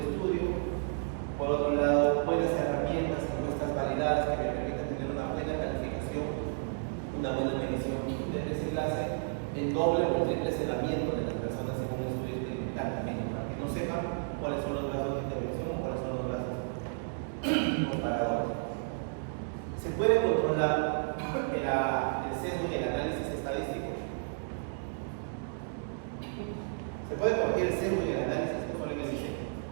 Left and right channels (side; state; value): left; silent; digital silence